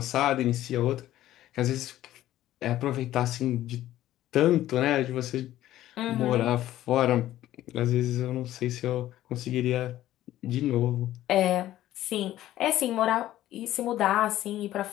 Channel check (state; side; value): quieter; right; 13.9 dB